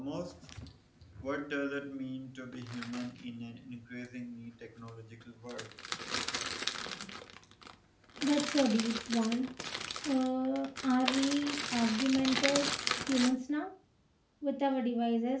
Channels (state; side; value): identical; both; correlation 1.00